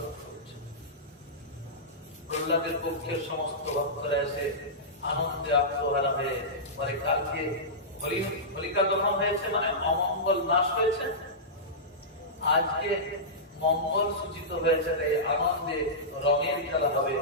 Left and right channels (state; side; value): normal; both; correlation -0.16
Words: করছে। প্রহ্লাদের পক্ষের সমস্ত ভক্তরা এসে আনন্দে আত্মহারা হয়ে মানে কালকে হোলিকা দহন হয়েছে, মানে অমঙ্গল নাশ হয়েছে, আজকে মঙ্গল সূচিত হয়েছে। তাই আনন্দে রঙের খেলা হবে,